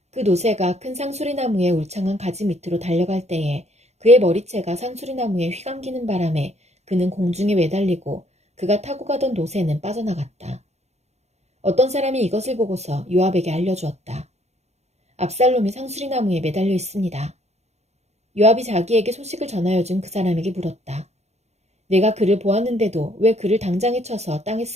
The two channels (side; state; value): left; late; 0.32 ms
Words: 그 노새가 큰 상수리나무의 울창한 가지 밑으로 달려갈 때에 그의 머리채가 상수리나무에 휘감기는 바람에 그는 공중에 매달리고 그가 타고 가던 노새는 빠져나갔다. 어떤 사람이 이것을 보고서 요압에게 알려주었다. 압살롬이 상수리나무에 매달려 있습니다. 요압이 자기에게 소식을 전하여 준 그 사람에게 물었다. 내가 그를 보았는데도 왜 그를 당장에 쳐서 땅에